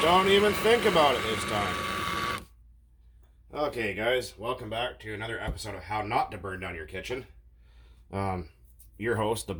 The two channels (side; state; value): both; identical; correlation 1.00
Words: Don't even think about it this time. Okay, guys, welcome back to another episode of How Not to Burn Down Your Kitchen. Your host, the